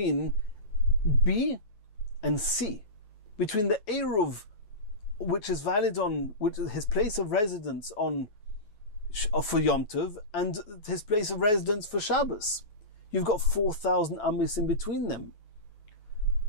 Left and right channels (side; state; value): right; late; 9.1 ms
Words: B and C? Between the Eruv, which is valid on, which is his place of residence on for Yom Tov and his place of residence for Shabbos. You've got 4,000 amis in between them.